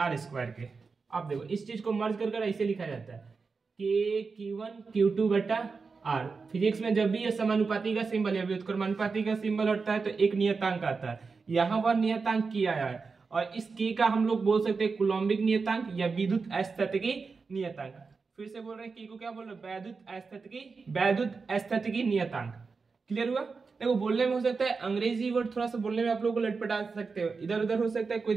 के। अब देखो इस चीज को मर्ज कर ऐसे लिखा जाता है कि Q1 Q2 बटा R। फिजिक्स में जब भी ये समानुपाती का सिंबल या व्युत्क्रमानुपाती का सिंबल हटता है तो एक नियतांक आता है, यहाँ पर नियतांक K आया है, और इस K का हम लोग बोल सकते हैं कूलॉम्बिक नियतांक या विद्युत स्थैतिकी नियतांक। फिर से बोल रहे हैं K को क्या बोल रहे हैं? वैद्युत स्थैतिकी नियतांक। क्लियर हुआ? देखो बोलने में हो सकता है अंग्रेजी वर्ड थोड़ा सा बोलने में आप लोगों को लटपटा सकते हो, इधर उधर हो सकता है, कोई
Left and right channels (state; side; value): quieter; left; 4.7 dB